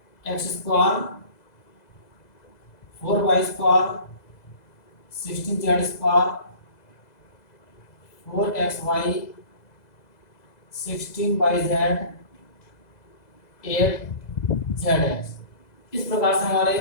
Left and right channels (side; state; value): right; late; 2.0 ms